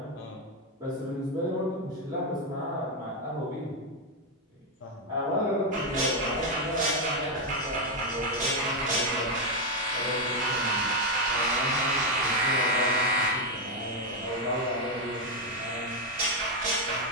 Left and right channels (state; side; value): normal; both; correlation 0.04